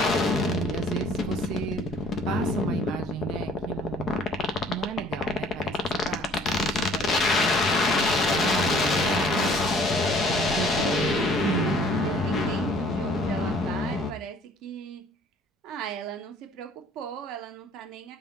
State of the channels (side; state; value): both; normal; correlation 0.56